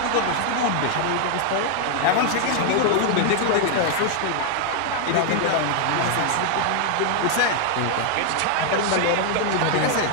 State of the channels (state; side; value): different; both; correlation 0.00